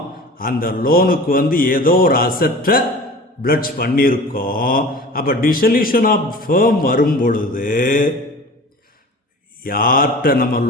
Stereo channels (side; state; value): both; normal; correlation 0.39